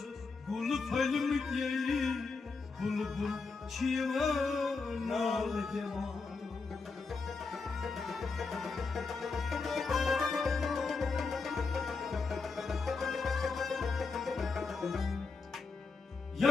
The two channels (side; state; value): right; quieter; 4.4 dB